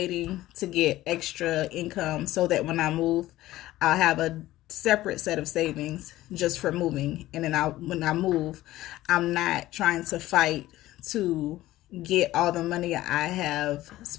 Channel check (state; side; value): quieter; right; 15.9 dB